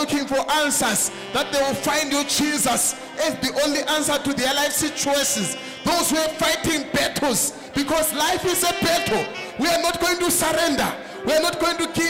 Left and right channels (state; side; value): identical; both; correlation 1.00